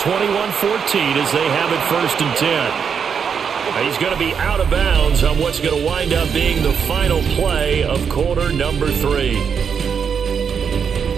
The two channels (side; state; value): left; quieter; 6.8 dB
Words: as they have it 1st and 10. He's going to be out of bounds on what's going to wind up being the final play of quarter number 3.